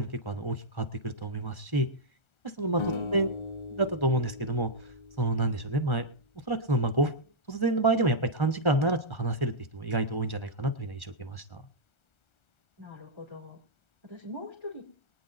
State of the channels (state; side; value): late; right; 1.3 ms